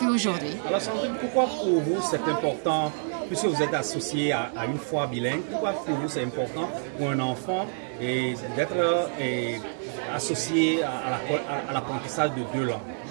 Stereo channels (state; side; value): silent; left; 60 dB below the other